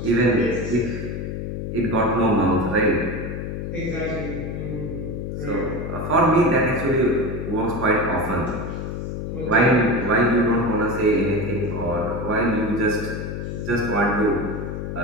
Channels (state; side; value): noise; left; hum, 5 dB below the sound